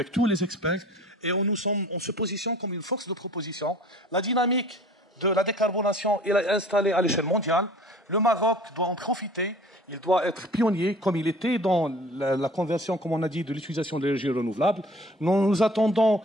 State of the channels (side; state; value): both; normal; correlation 0.47